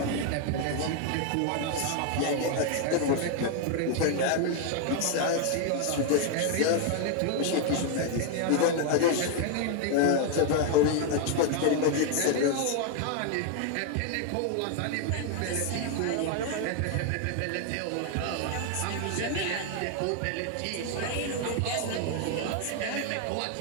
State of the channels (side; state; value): both; different; correlation 0.01